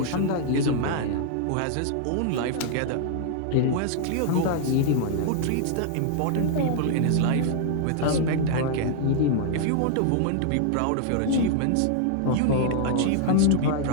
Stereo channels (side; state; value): both; different; correlation 0.00